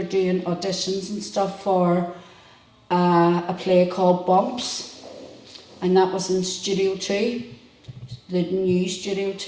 doing auditions and stuff for a play called Bumps, and that was in Studio 2, the new Studio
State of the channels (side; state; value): both; identical; correlation 1.00